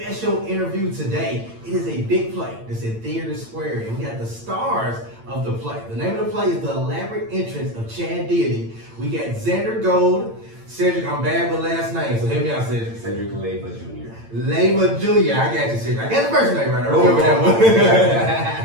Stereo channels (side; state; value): left; late; 8.9 ms